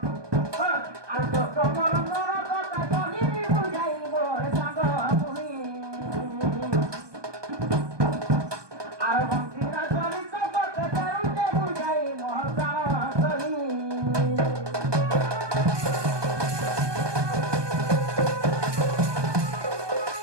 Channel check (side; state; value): left; late; 1.2 ms